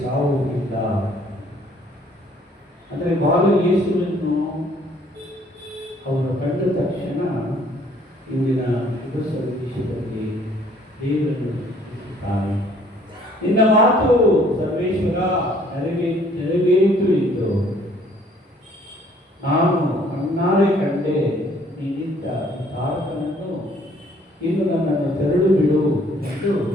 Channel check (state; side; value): normal; both; correlation 0.60